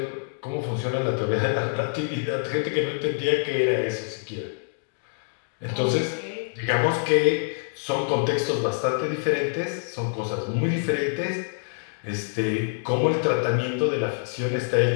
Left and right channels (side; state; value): right; silent; digital silence